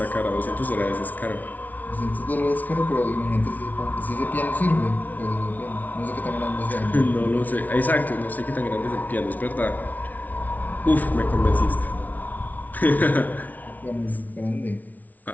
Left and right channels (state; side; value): late; right; 0.077 ms